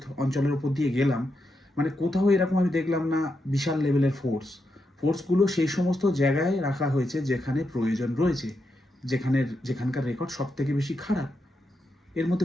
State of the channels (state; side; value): normal; both; correlation 0.84